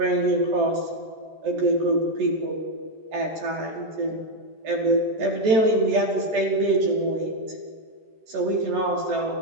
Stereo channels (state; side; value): late; left; 14 ms